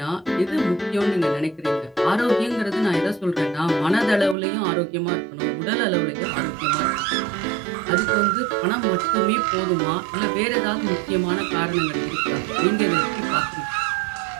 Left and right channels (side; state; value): left; drops out; at 4.4 s